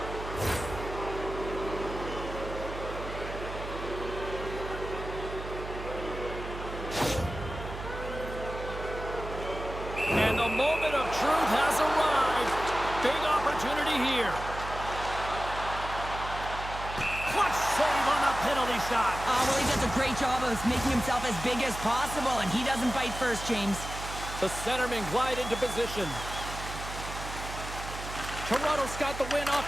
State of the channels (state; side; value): noise; right; hum, 9 dB below the sound